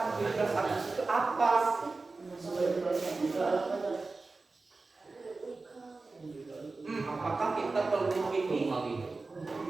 17 Agustus itu apa? Apakah kita perlu ini?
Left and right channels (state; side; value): quieter; left; 3.7 dB